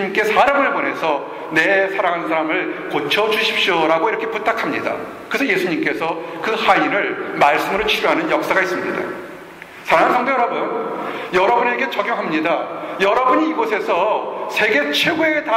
사람을 보내서 내 사랑하는 사람을 고쳐주십시오라고 이렇게 부탁합니다. 그래서 예수님께서 그 하인을 말씀으로 치료하는 역사가 있습니다. 사랑하는 성도 여러분, 여러분에게 적용합니다. 여러분이 이곳에서 세계 최고의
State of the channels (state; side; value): identical; both; correlation 1.00